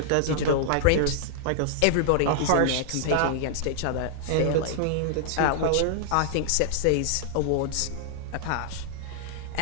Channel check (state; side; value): different; both; correlation -0.01